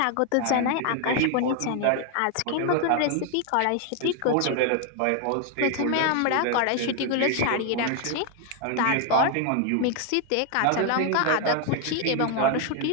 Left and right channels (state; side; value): different; both; correlation 0.01